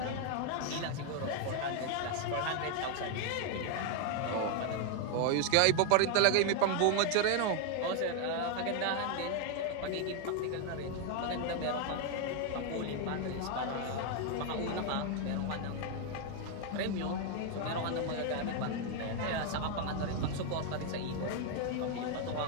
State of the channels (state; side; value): different; both; correlation 0.01